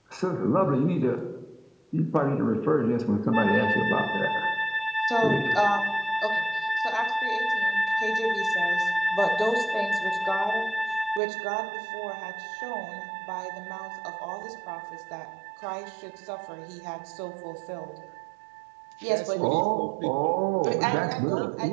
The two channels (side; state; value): left; drops out; at 11.2 s